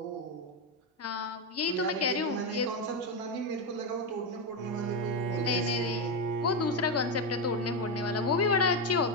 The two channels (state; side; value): normal; both; correlation 0.08